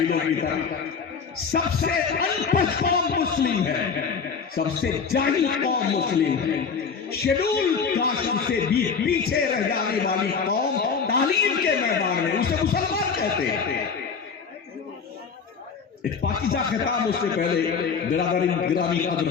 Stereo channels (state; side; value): quieter; right; 5.8 dB